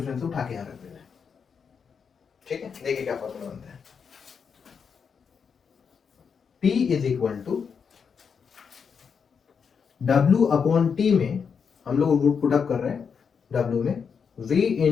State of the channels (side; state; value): right; quieter; 6.3 dB